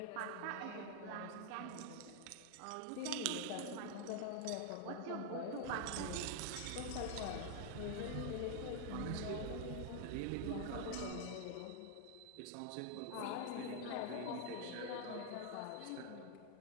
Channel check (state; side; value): different; both; correlation 0.00